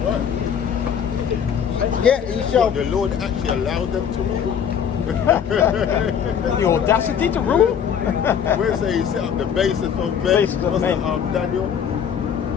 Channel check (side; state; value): right; quieter; 8.0 dB